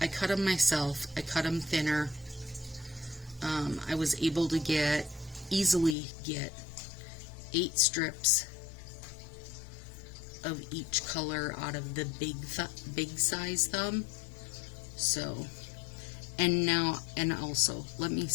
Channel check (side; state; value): right; drops out; at 6.0 s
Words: cut them myself. I cut them thinner. I was able to easily get 8 strips of each color out of the big size thumb. So, and also, let me